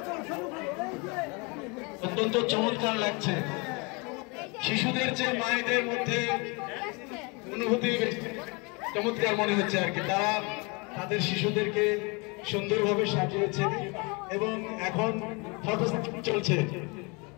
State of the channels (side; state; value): right; quieter; 30.0 dB